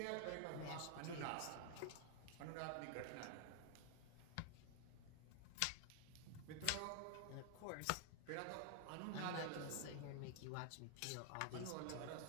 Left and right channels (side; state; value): both; different; correlation 0.00